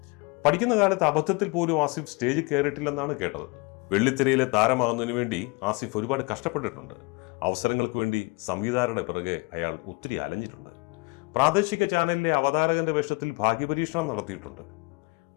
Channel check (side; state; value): right; quieter; 27.9 dB